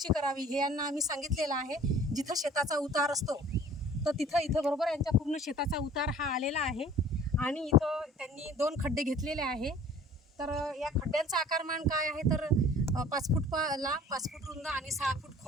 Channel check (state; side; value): normal; both; correlation 0.50